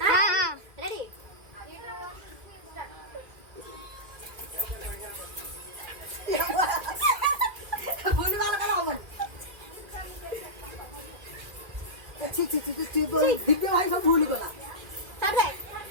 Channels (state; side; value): late; left; 1.7 ms